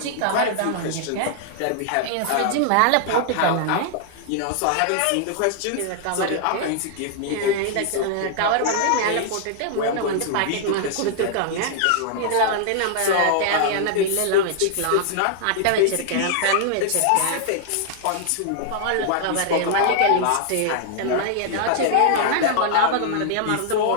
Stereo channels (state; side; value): different; both; correlation -0.01